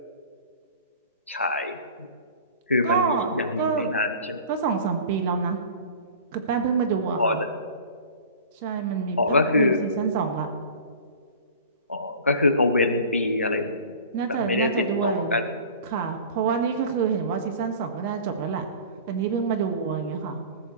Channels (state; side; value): inverted; both; correlation -0.41